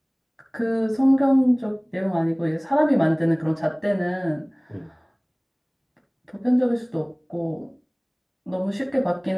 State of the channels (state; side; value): identical; both; correlation 1.00